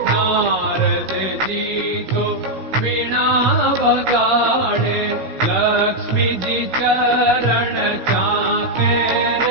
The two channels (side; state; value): left; late; 16 ms